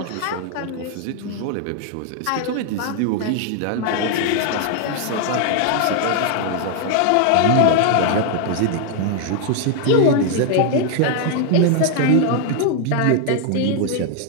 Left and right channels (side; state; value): both; different; correlation 0.00